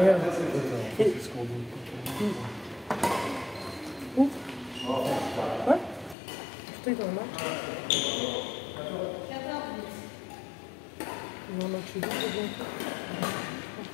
Et... Où? Ouais? Putain, dans le match. Non, non, je suis bien.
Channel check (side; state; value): right; drops out; at 6.2 s